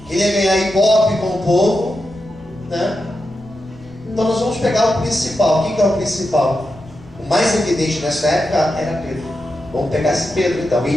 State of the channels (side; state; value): left; noise; rumble, 21 dB below the sound